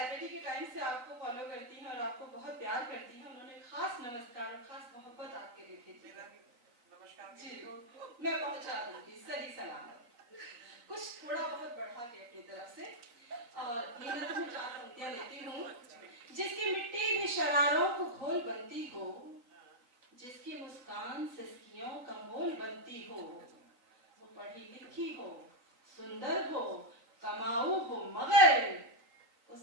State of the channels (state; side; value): late; left; 3.9 ms